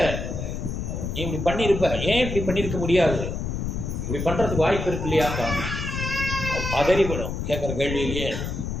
நீ இப்படி பண்ணியிருப்ப, ஏன் இப்படி பண்ணியிருக்க முடியாது, இப்படி பண்ணுறதுக்கு வாய்ப்பு இருக்கு இல்லையாப்பா. பதறிவிடும் கேட்குற கேள்வியிலேயே.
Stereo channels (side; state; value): left; noise; rumble, 4 dB below the sound